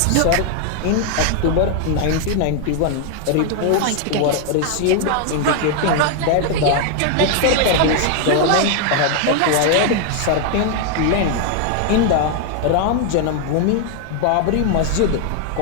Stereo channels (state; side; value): different; both; correlation 0.00